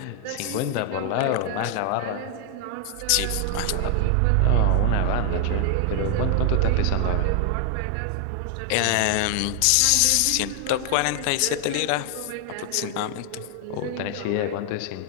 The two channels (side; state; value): both; different; correlation 0.00